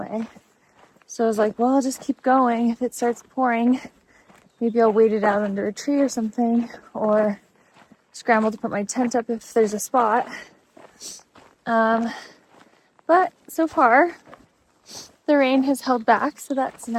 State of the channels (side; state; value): both; identical; correlation 1.00